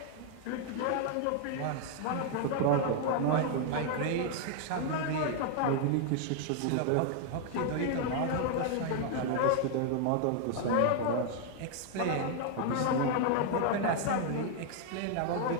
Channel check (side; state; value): both; different; correlation 0.00